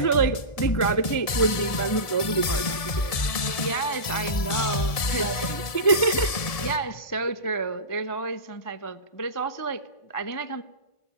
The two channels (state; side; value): late; right; 1.7 ms